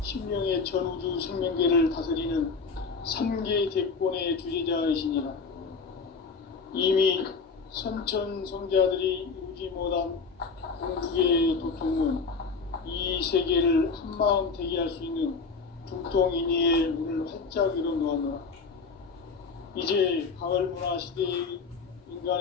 신명의 전우주 생명계를 다스리는 3개 대권의 주재자이시니라. 이미 선천성자들이 이루지 못한 공국의 도통문, 이 세계를 한마음 되게 할 수 있는 중통인의의 문을 활짝 열어놓았노라. 이제 가을 문화 시대의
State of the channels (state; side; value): quieter; right; 4.8 dB